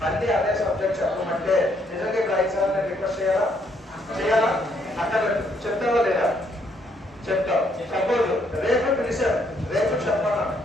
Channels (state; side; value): normal; both; correlation 0.71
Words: మళ్ళీ అదే సబ్జెక్ట్ చెప్పమంటే నిజంగా ఇప్పుడు 5 సార్లు నేను రిక్వెస్ట్ చేయాలా? అక్కడ చెప్తావా లేదా? చెప్తావు. సపోజ్ రేపు పిలిచాను, రేపు చెప్పాలా?